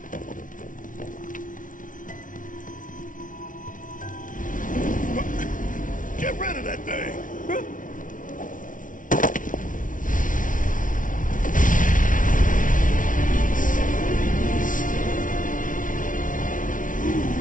Get rid of that thing!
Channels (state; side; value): late; right; 0.38 ms